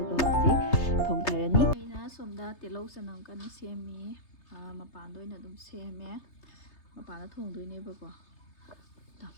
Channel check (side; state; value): right; late; 3.3 ms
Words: ꯍꯧꯖꯤꯛ ꯊꯣꯡꯊꯔꯅꯤ. ꯑꯩꯅ ꯁꯣꯝꯗ ꯇꯤꯜꯍꯧ ꯆꯅꯝ ꯀꯟꯅ ꯁꯦꯝꯃꯤ. ꯃꯄꯥꯟꯗ ꯑꯣꯏꯅ ꯑꯗꯨꯝ ꯁꯦꯝꯃꯦ. ꯃꯄꯥꯟꯗ ꯊꯣꯡꯗꯣꯏꯅꯦꯕꯀꯣ.